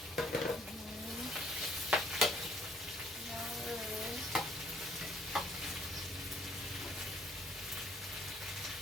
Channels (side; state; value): both; normal; correlation 0.62